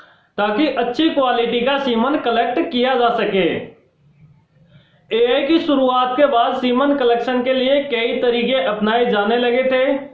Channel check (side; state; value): both; identical; correlation 1.00